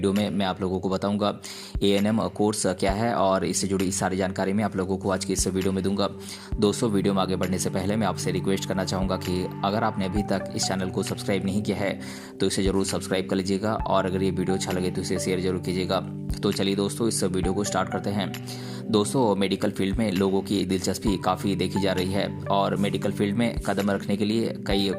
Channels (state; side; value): identical; both; correlation 1.00